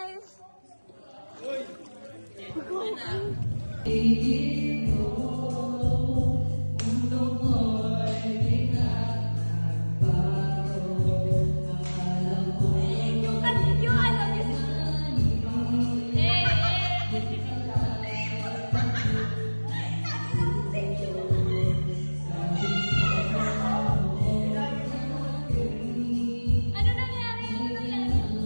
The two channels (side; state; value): both; inverted; correlation -1.00